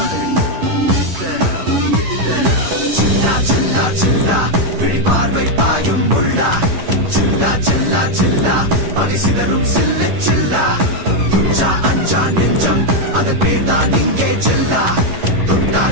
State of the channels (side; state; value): left; late; 11 ms